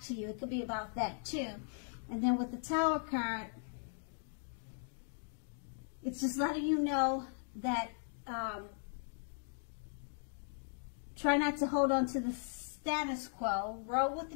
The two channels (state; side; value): silent; right; digital silence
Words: to you. It could be about that too. And then with the Tower card, it's just letting you know that try not to hold on to the status quo. Roll with the